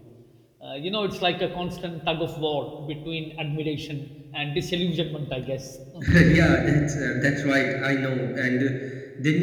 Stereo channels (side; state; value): both; identical; correlation 1.00